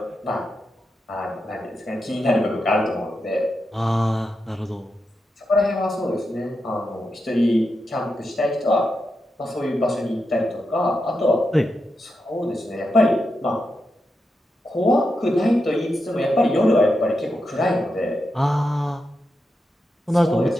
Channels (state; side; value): normal; both; correlation 0.87